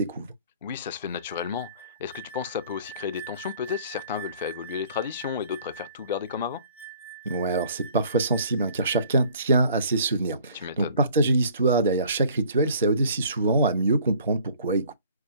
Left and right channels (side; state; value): both; inverted; correlation -0.53